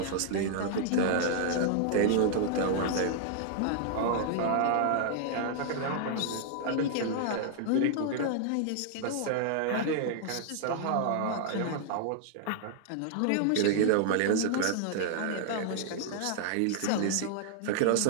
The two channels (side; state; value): both; different; correlation 0.00